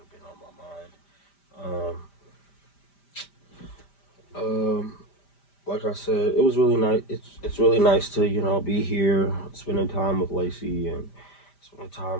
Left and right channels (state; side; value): late; right; 5.1 ms